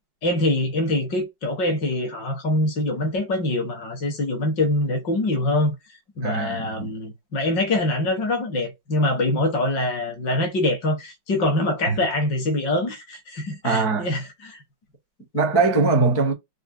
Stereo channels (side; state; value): right; late; 5.4 ms